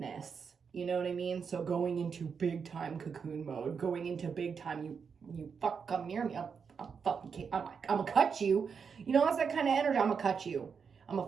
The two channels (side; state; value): left; quieter; 6.1 dB